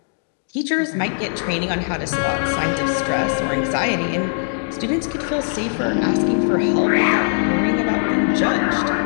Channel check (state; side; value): silent; right; digital silence